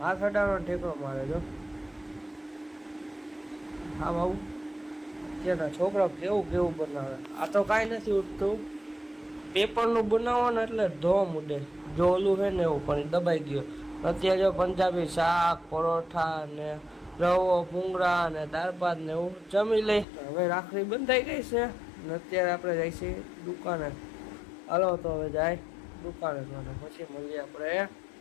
હાથ અડાડો ઠેકરો મારે જો આમ આવું. અત્યારના છોકરા કેવું કેવું બનાવે. આ તો કાંઈ નથી ઉઠતું, પેપરનું બનાવો ને એટલે ધોમ ઉડે. જો ઓલું છે ને એવું પણ દબાઈ ગયો. અત્યારે જો પંજાબી શાક પરોઠા ને રવો ભૂંગળા ને દાળ ભાત ને એવું જમી લઈ. હવે રાખડી બંધાઈ ગઈ છે ને અત્યારે આપણે જઈશું દુકાને. હાલો તો હવે જાય દુકાને પછી મળીએ આપણે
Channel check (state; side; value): drops out; right; at 20.1 s